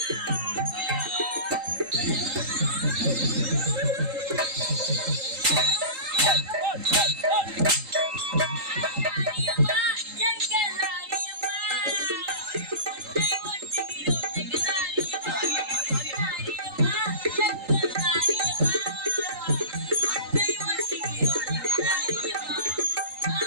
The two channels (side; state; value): left; late; 3.8 ms